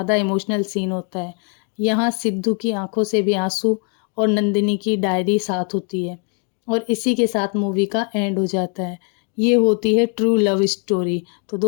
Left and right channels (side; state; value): right; quieter; 39.7 dB